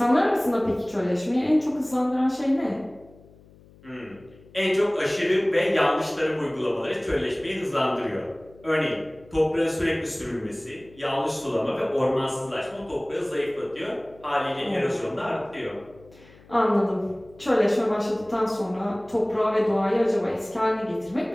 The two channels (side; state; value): left; noise; hum, 25 dB below the sound